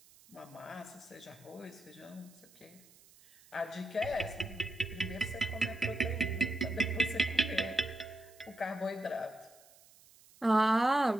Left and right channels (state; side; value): noise; right; hiss, 25 dB below the sound